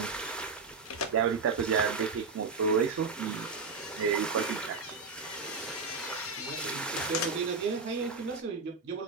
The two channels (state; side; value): quieter; left; 4.5 dB